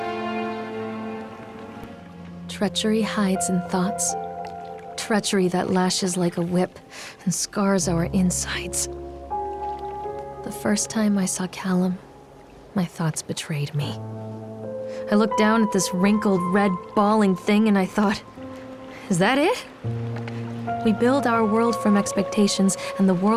Treachery hides in thoughts. Treachery that lashes like a whip and scars our insides. The first time I saw Callum, my thoughts betrayed me. I looked down at this wrinkled, red, bawling thing and I thought, is that it? We build our world from expectations, and the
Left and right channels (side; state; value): both; identical; correlation 1.00